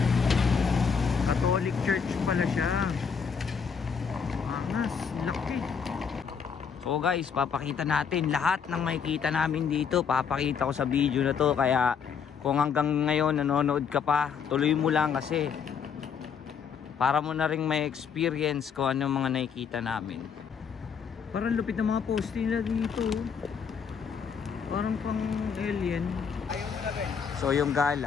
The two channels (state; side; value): quieter; right; 6.6 dB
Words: Catholic Church pala siya. Angas, laki. So guys, papakita natin lahat ng makikita namin dito. Papakita ko sa video na to, kaya kung hanggang ngayon nanonood ka pa, tuloy mo lang kasi para mo na rin may experience ko ano mga nakikita namin. Parang lupit ng mga post nila dito. Parang pang alien. So yung